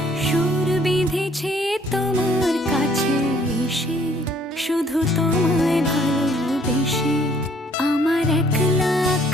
সুর বিঁধেছে তোমার কাছে এসে, শুধু তোমায় ভালোবেসে। আমার একলা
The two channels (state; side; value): normal; both; correlation 0.62